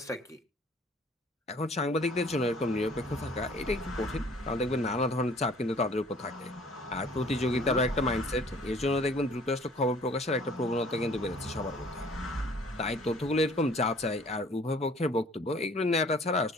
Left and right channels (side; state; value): both; normal; correlation 0.54